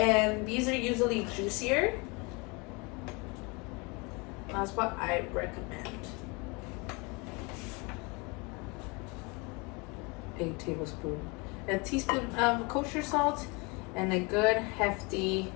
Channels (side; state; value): right; quieter; 28.7 dB